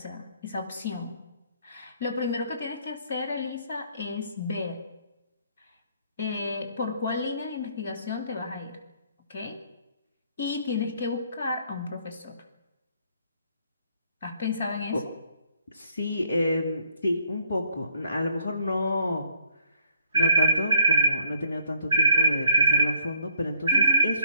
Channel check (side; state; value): both; inverted; correlation -0.66